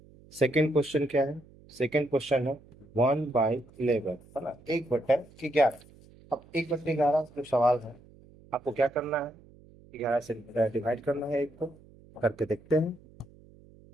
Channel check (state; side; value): noise; right; hum, 25 dB below the sound